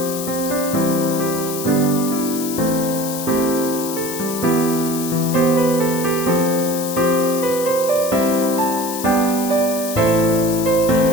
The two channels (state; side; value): noise; left; hiss, 8 dB below the sound